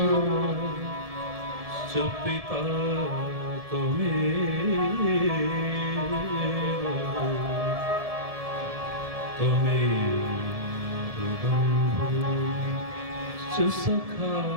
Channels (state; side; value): late; left; 1.7 ms